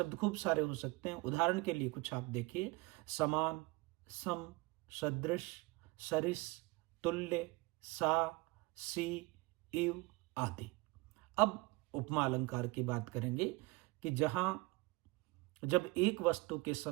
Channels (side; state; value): left; quieter; 23.7 dB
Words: खूब सारे हो सकते हैं। उदाहरण के लिए कुछ आप देखिए, समान, सम, सदृश, सरिस, तुल्य, सा, सी, इव आदि। अब उपमा अलंकार की बात करेंगे कि जब एक वस्तु के